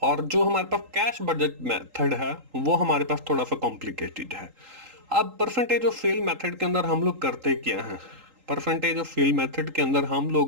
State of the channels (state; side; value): late; left; 3.8 ms